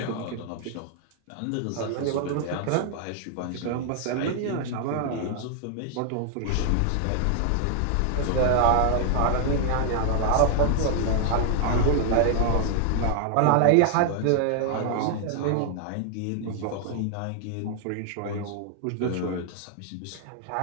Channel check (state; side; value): different; both; correlation 0.00